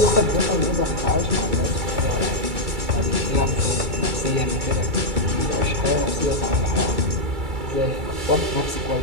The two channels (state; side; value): late; left; 2.3 ms